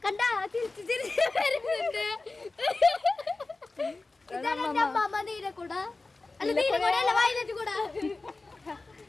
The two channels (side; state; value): right; quieter; 3.5 dB